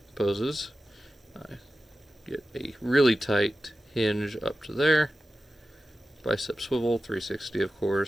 poses. Get a really tight hinge up to there. Bicep swivel, 360 of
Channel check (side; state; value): both; normal; correlation 0.94